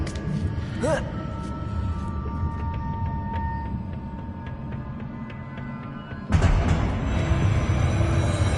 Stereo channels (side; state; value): both; identical; correlation 1.00